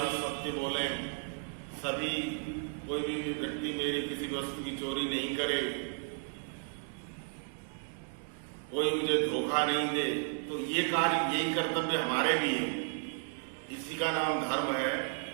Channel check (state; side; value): silent; left; 55 dB below the other